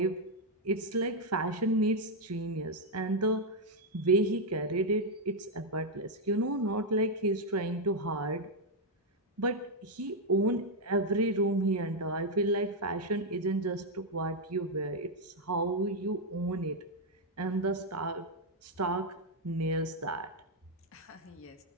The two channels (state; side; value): normal; both; correlation 0.00